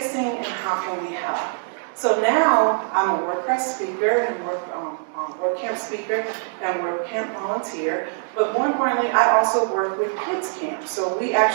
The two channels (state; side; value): silent; left; 63 dB below the other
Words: and how can we help? So now I'm a WordPress speaker and WordCamp speaker and WordCamp volunteer. But more importantly, I also work with KidsCamps. So we